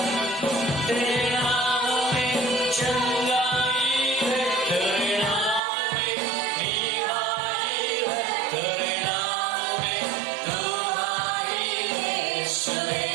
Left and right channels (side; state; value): left; drops out; at 5.6 s